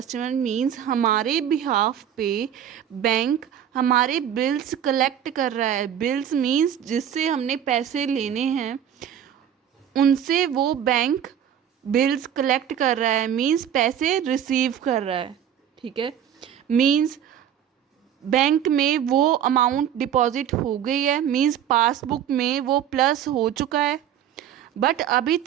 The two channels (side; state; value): left; quieter; 9.7 dB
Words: means हमारे बिहाफ पे बैंक हमारे बिल्स कलेक्ट कर रहा है। बिल्स मीन्स जिससे हमने पैसे लेने हैं उनसे वो बैंक बिल्स कलेक्ट कर रहा है मीन्स पैसे रिसीव कर रहा है, ठीक है। मीन्स बैंक में वो अमाउंट डिपॉजिट हो गई है, मीन्स पासबुक में वो प्लस हो चुका है, बट अभी